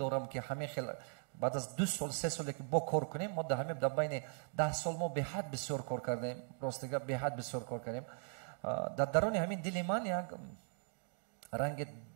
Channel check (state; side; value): silent; left; 52 dB below the other